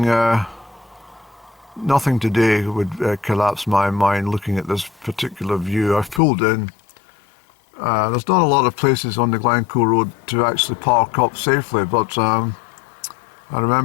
today would collapse my mind looking at this particular view. I've pulled in. There's not a lot of places on the Glencoe road to actually park up safely, but I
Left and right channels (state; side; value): drops out; right; at 6.2 s